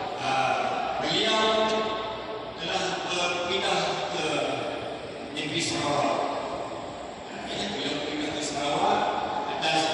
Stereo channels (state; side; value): identical; both; correlation 1.00